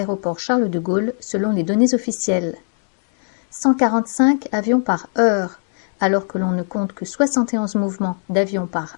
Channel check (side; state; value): right; silent; 61 dB below the other